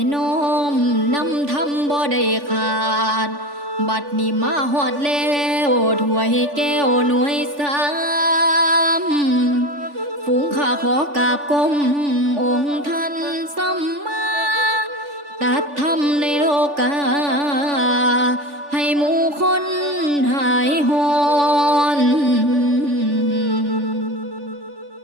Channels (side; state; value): left; late; 3.5 ms